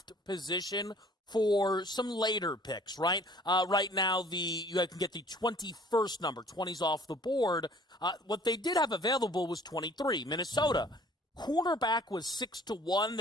position for some later picks, right? Right now, you can get the 21st number. 20's off the board. What they did have available was 23, Minnesota. Cornerback was 6-1.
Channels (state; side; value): normal; both; correlation 0.53